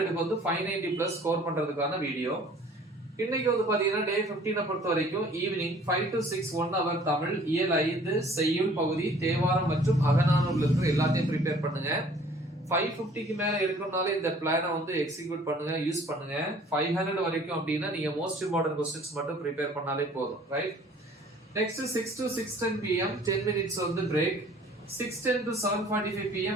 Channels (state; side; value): normal; both; correlation 0.53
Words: வந்து 590 பிளஸ் ஸ்கோர் பண்றதுக்கான வீடியோ. இன்னைக்கு வந்து பாத்தீங்கன்னா டே 15 பொறுத்த வரைக்கும் ஈவினிங் 5 to 6 1 hour தமிழ், இயல் 5 செய்யுள் பகுதி, தேவாரம் மற்றும் அகநானூர்ல இருக்கிற எல்லாத்தையும் ப்ரிப்பேர் பண்ணுங்க. 550க்கு மேல இருக்கறனால இந்த பிளானை வந்து எக்ஸிக்யூட் பண்ணுங்க, யூஸ் பண்ணுங்க. 500 வரைக்கும் அப்படினா நீங்க மோஸ்ட் இம்பார்ட்டன்ட் क्वेश्चंस மட்டும் ப்ரிப்பேர் பண்ணாலே போதும், right? Next 6 to 6:10 pm 10 minutes வந்து பிரேக். 6:10 to 7:45